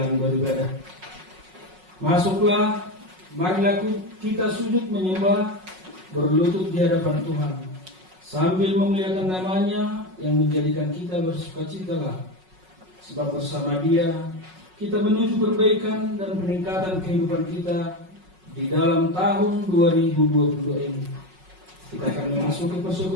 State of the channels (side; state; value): left; late; 5.4 ms